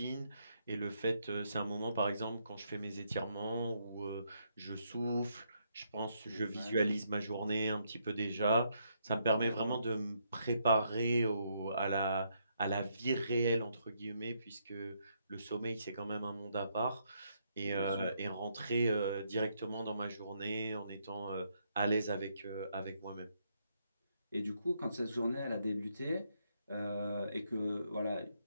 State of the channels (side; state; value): both; inverted; correlation -0.75